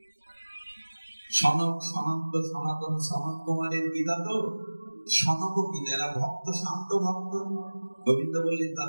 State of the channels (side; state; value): both; inverted; correlation -1.00